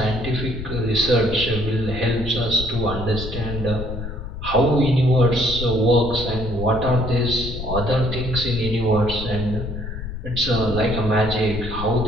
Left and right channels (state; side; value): noise; left; rumble, 8 dB below the sound